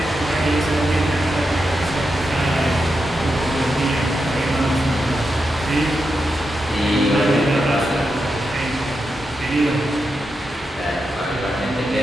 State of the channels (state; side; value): normal; both; correlation 0.87